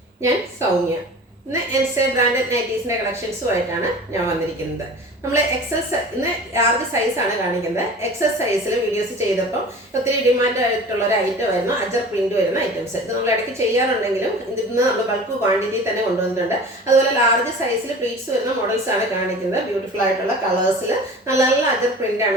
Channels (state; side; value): normal; both; correlation 0.40